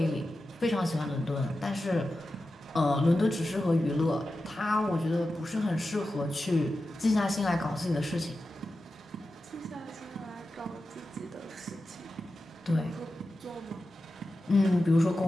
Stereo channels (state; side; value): normal; both; correlation 0.92